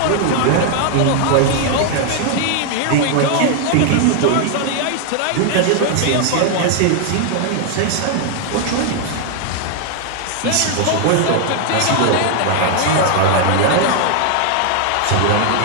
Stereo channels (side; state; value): both; different; correlation 0.00